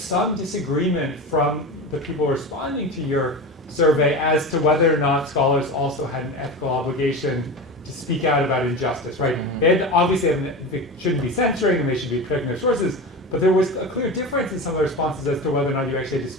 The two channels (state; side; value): normal; both; correlation 0.26